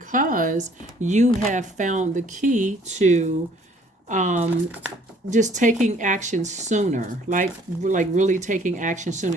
you have found the key to just taking action sooner, like really taking action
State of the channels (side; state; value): both; normal; correlation 0.59